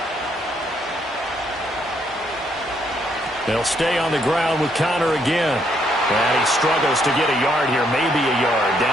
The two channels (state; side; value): normal; both; correlation 0.72